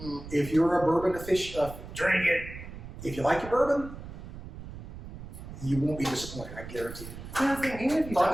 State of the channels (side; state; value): right; noise; rumble, 12 dB below the sound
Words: If you're a bourbon aficionado, Drink it. if you like your bourbon, you won't be disappointed. I guarantee you. Yeah, I was thinking, even if you